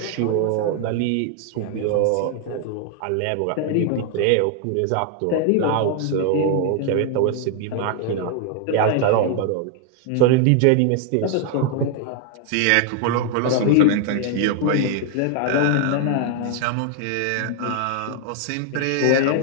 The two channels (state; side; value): different; both; correlation 0.00